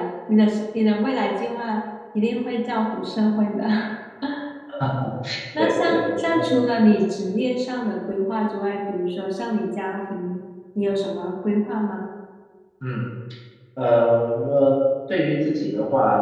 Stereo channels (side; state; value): both; identical; correlation 1.00